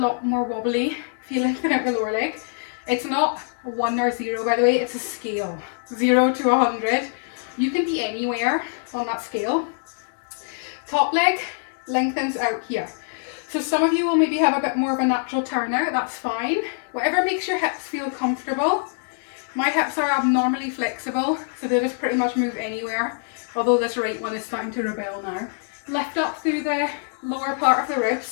lot more wobbly if you lengthen out the lower leg. It's not 1 or 0, by the way, it's a scale. 0 to 100. You can be anywhere on that scale. Top leg lengthens out here. So some of you will maybe have a bit more of a natural turnout, that's fine. Whatever makes your hips feel comfortable. My hips are abnormally flexible, so they just pretty much move anywhere, although this right one is starting to rebel now. Lift up through the lower part of the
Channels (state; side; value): silent; right; digital silence